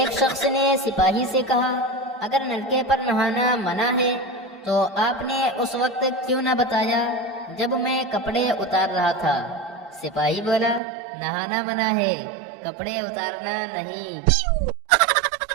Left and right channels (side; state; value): left; drops out; at 10.8 s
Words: شخص نے سپاہی سے کہا، اگر نلکے پر نہانا منع ہے تو آپ نے اس وقت کیوں نہ بتایا جب میں کپڑے اتار رہا تھا؟ سپاہی بولا، نہانا منع ہے، کپڑے اتارنا نہیں۔